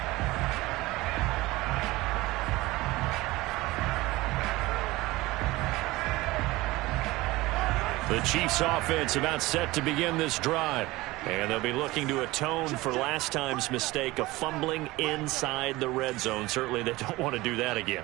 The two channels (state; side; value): quieter; left; 19.9 dB